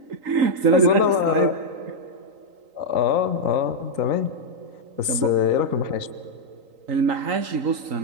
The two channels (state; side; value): late; left; 3.9 ms